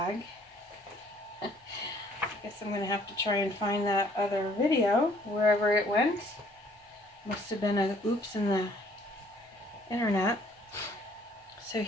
I guess I'm going to have to try and find that other video wherever it went. Must have been an oops in the internet. So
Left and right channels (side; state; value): both; normal; correlation 0.60